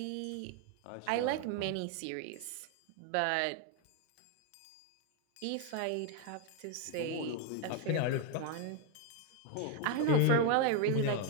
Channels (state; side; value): different; both; correlation 0.01